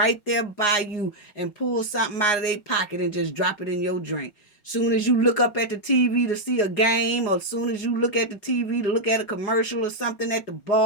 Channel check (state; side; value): late; right; 5.3 ms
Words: there by you and pull something out of their pocket and just drop it in your drink. Soon as you look up at the TV to see a game, or soon as you look at the TV to look at a commercial or something at the